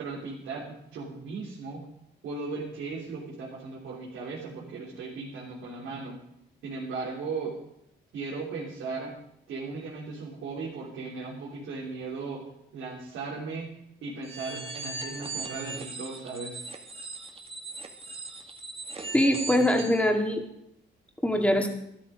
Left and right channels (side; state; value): both; normal; correlation 0.68